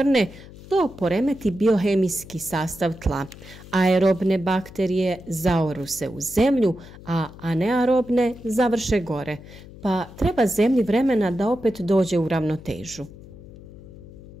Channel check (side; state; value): left; noise; hum, 18 dB below the sound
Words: to poremeti biohemijski sastav tla. Aerobne bakterije zaoru se u zemlju, a anearobne završe gore, pa treba zemlji vremena da opet dođe u ravnotežu.